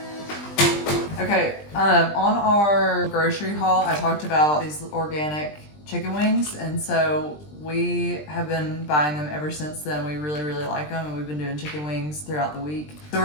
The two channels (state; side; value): late; right; 20 ms